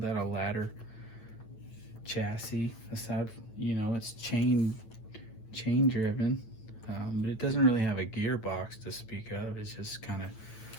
a ladder chassis. Aside, you know, it's chain driven, but it doesn't really have a gearbox to speak of. It's just kind of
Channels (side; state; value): right; late; 9.1 ms